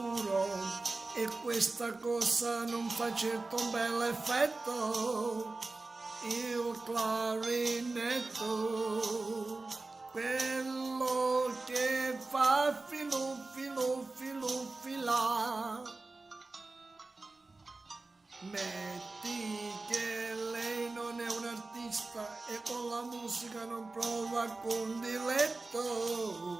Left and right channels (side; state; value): left; quieter; 3.4 dB